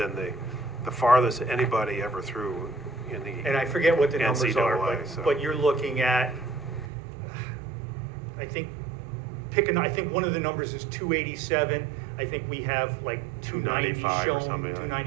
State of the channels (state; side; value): drops out; left; at 6.9 s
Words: the farthest anybody ever threw in the. And I forget what the numbers are, NCAA, so. but you're looking at, I think one of the numbers is 287. I think we have like 290 295 or shown, something like that.